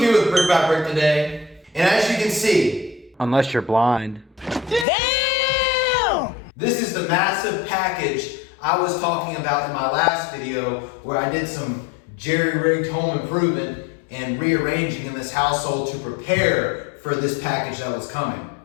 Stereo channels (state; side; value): drops out; right; at 4.9 s